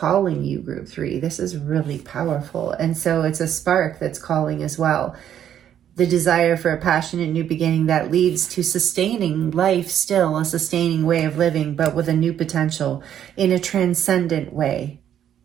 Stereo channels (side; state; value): left; quieter; 10.0 dB